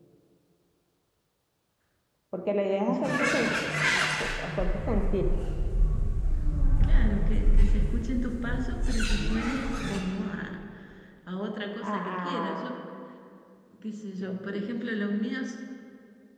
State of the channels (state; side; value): identical; both; correlation 1.00